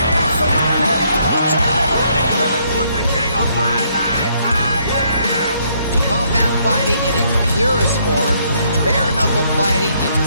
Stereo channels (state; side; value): inverted; both; correlation -0.70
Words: from Mike Perry. Double jab. Who's the king of violence? I am! Combat fighting in its purest form, bare knuckle fighting in the